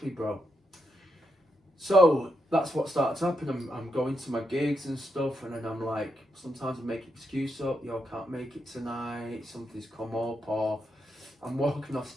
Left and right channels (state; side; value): normal; both; correlation 0.82